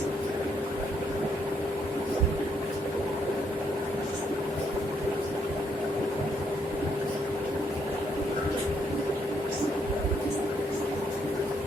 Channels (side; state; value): both; normal; correlation 0.73